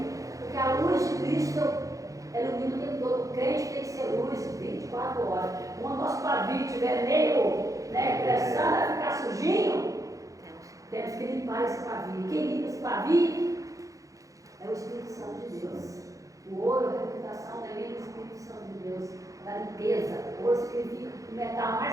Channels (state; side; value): late; left; 0.16 ms